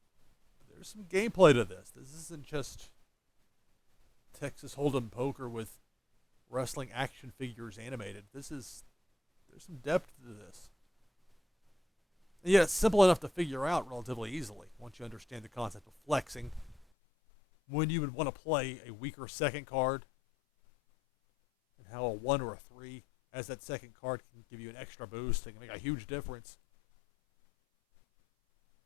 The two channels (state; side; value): drops out; right; at 16.9 s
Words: There's some gameplay to this. This isn't just Texas Hold'em poker with wrestling action figures animated. There's some depth to this. And yet it's simple enough to figure out relatively easily once you understand the concept of flexing. When you would want to play a weaker second card, and how a 1 or a 3 as that second card can give you an extra boost. It can make a huge difference.